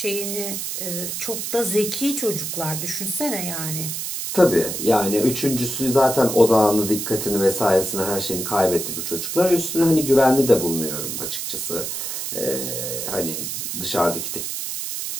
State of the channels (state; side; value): noise; right; hiss, 4 dB below the sound